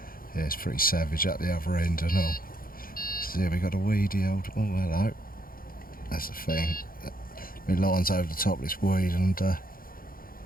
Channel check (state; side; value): late; right; 0.42 ms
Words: it's pretty savage at the other end and all. So yeah, we got a weedy old, oh hello, that's the thing. My line's over the top of this weed, and yeah,